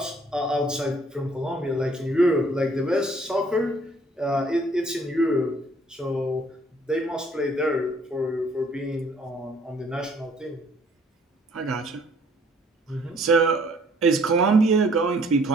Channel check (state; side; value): normal; both; correlation 0.60